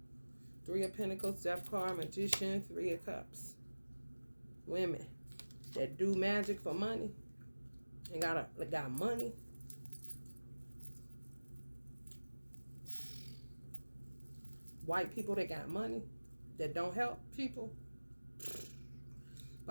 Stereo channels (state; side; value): inverted; both; correlation -1.00